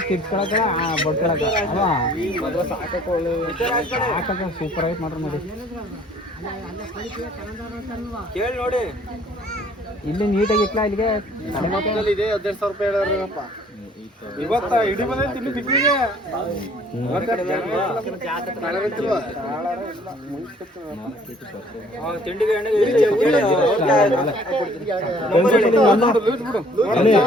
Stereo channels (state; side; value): normal; both; correlation 0.57